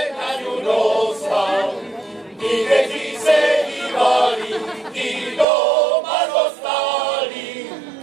na ňu dostal. Ti, kteří se hýbali, ti doma dostali.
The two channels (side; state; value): left; drops out; at 5.5 s